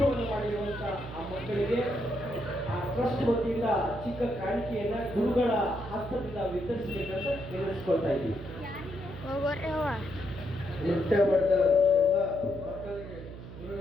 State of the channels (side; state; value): right; noise; hum, 12 dB below the sound